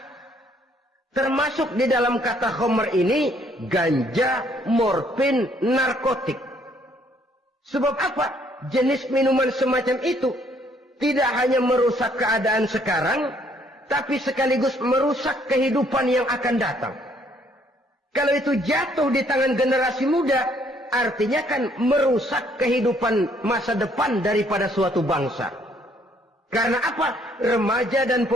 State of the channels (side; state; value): both; normal; correlation 0.65